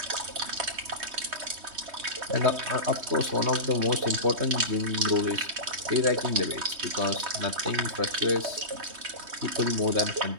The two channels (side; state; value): left; late; 3.2 ms